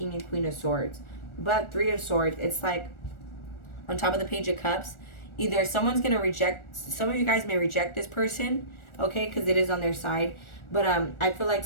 and Queen of Swords. But 3 of Swords, it's like on top of the Page of Cups, either someone's going to reject, some of you guys may reject this person, okay, because it is on their side. But I feel like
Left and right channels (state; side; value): late; right; 1.4 ms